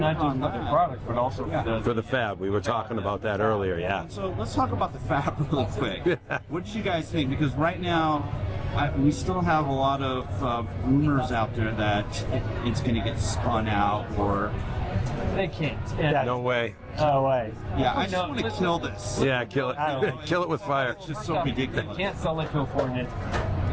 product, but also for the fab. We were talking about that earlier, And so let's talk about the fab really quick. What did you guys think? Because right now, we still have a lot of rumors out there that it's going to get spun out, or they can't. No way. No way. Yeah, I just want to kill this. Yeah, kill it. Kill it with fire. It's just so ridiculous. You can't sell it to a foreign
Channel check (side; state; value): both; identical; correlation 1.00